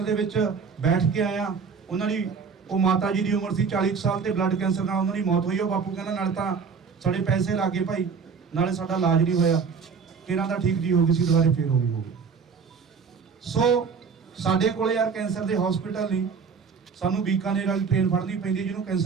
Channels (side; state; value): left; quieter; 5.7 dB